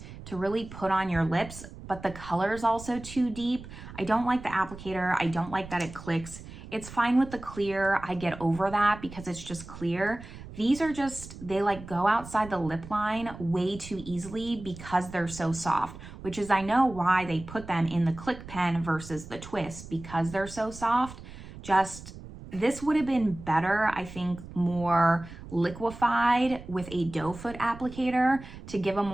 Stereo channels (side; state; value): right; noise; rumble, 14 dB below the sound